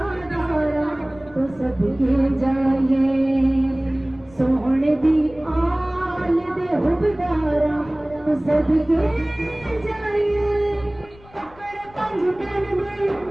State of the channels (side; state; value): left; noise; rumble, 24 dB below the sound